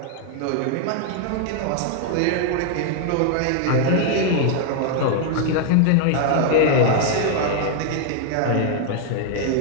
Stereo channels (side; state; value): both; different; correlation 0.00